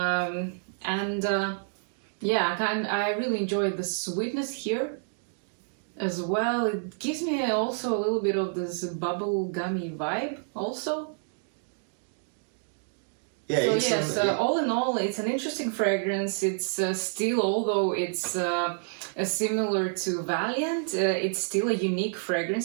really enjoy the sweetness here as well. It gives me also a little bit of this bubble gummy vibe also. Yeah, So all in all, it's an interesting fragrance. It's still, although it's similar to Valiant, it's still a unique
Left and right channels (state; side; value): silent; left; digital silence